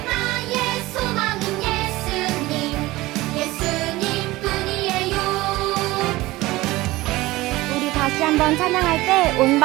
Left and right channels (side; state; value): left; quieter; 19.0 dB